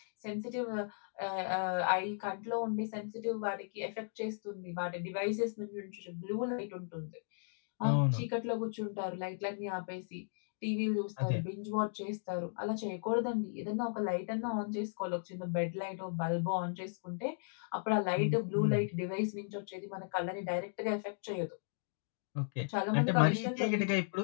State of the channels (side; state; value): right; silent; digital silence